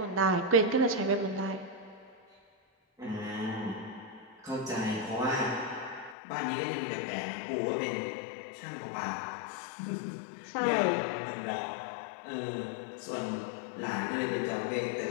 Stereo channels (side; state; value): right; drops out; at 6.2 s